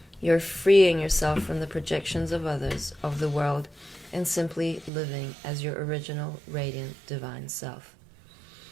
You're freeing yourself from the projections of others, of the world, and simply living as your original, radiant, divine self.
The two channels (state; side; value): drops out; left; at 4.9 s